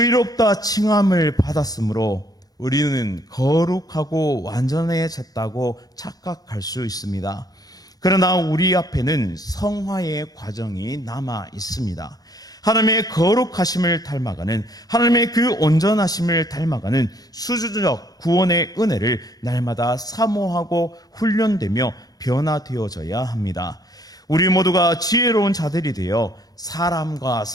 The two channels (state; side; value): late; right; 0.18 ms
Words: 칭함을 받았으므로 우리는 거룩하고 완전해졌다고 착각할 수 있습니다. 그러나 우리 앞에는 성화의 과정이 남아 있습니다. 하나님의 거룩하심을 닮아가는, 하나님의 그 온전하심을 닮아가는 수주적 구원의 은혜를 날마다 사모하고 훈련되며 변화되어져야 합니다. 우리 모두가 지혜로운 자들이 되어 사람과